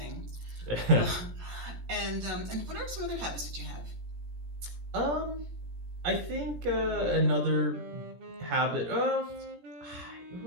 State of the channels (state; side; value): late; left; 17 ms